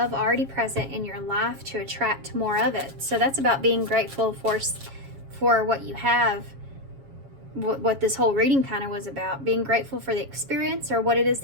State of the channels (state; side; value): late; left; 7.3 ms